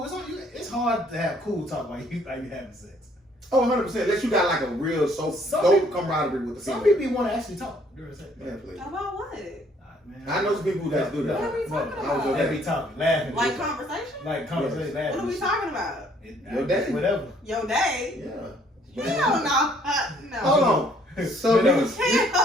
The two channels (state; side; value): normal; both; correlation 0.63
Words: It's hard to have cool talk while you having sex. Oh, 100%. Unless you got like a real dope camaraderie with the some female. people want to actually talk during sex. Yeah, please. About what? Man. I know some people who guys do that. What are we talking about? They be talking, laughing. Like conversation? Like conversation, laughing. What are we talking about? Your day. Whatever. Your day? Yeah. Hell no. Hold on. So